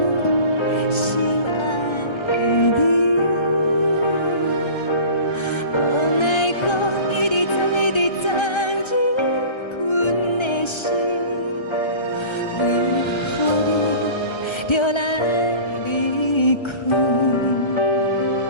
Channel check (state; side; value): late; right; 1.3 ms